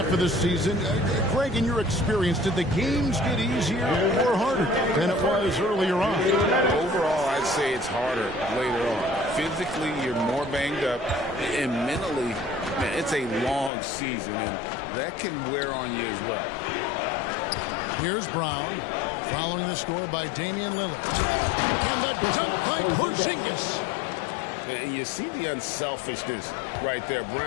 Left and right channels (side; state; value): right; drops out; at 13.7 s